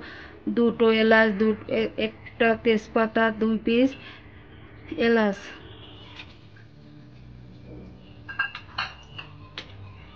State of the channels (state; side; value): identical; both; correlation 1.00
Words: দুটো এলাচ, একটা তেজপাতা, 2 পিস এলাচ।